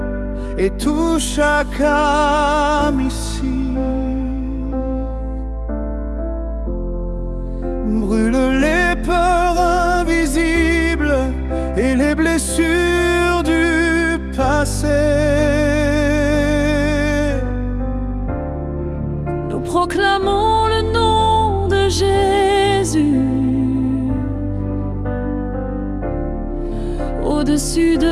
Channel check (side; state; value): both; identical; correlation 1.00